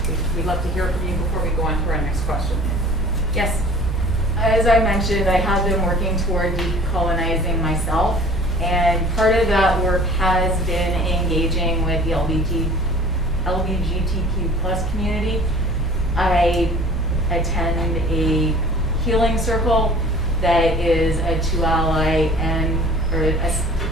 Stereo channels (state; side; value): normal; both; correlation 0.48